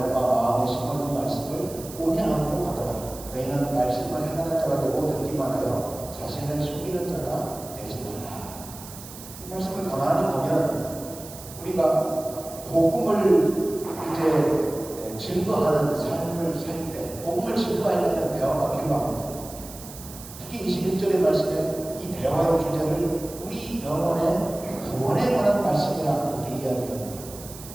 바 마음에 심어둔 말씀을 온유함으로 받아라. 너희는 말씀을 행하는 자가 되고 듣기만 하여 자신을 속이는 자가 되지 말라. 이 말씀을 가만히 보면 우리가 복음을 이제 증거하는 삶을 살 때, 복음을 증거하려면 대화가 필요합니다. 특히 21절의 말씀에 이 대화의 주제를 우리 영혼의 구원에 관한 말씀이라 이렇게 이야기합니다.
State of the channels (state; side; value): noise; right; hiss, 15 dB below the sound